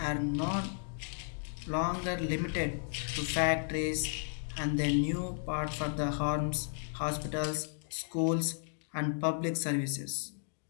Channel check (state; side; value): silent; right; digital silence